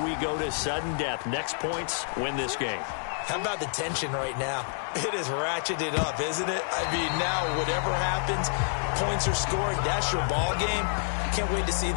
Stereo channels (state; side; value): silent; right; digital silence